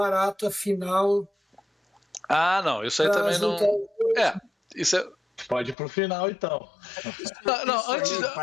final. Não, isso aí também não. Isso é. Pode ir pro final, então.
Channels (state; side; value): drops out; right; at 5.8 s